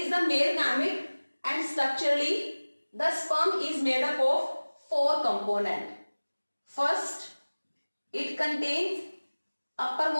the male gamete and structurally the sperm is made up of 4 components. First, it contains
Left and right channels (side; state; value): both; inverted; correlation -1.00